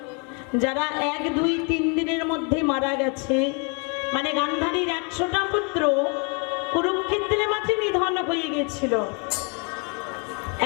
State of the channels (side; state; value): right; quieter; 35.0 dB